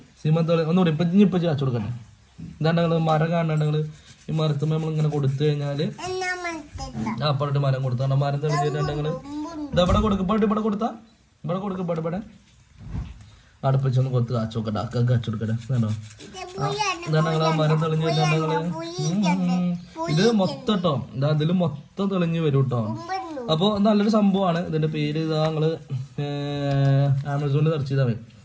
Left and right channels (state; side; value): identical; both; correlation 1.00